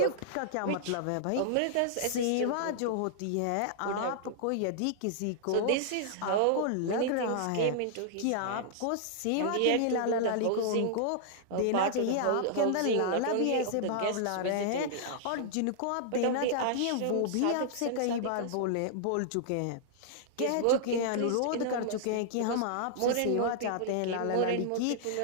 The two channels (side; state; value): both; different; correlation -0.01